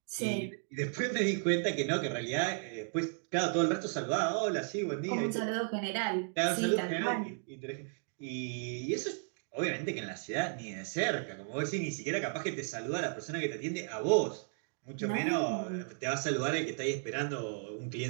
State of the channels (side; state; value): left; silent; 55 dB below the other